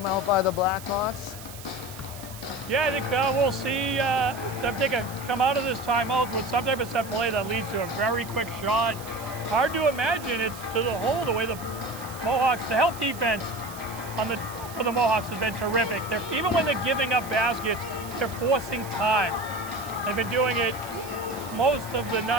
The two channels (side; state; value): right; noise; hiss, 15 dB below the sound